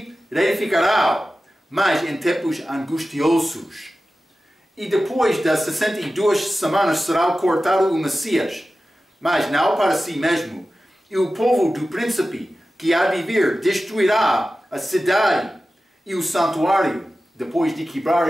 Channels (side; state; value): both; normal; correlation 0.94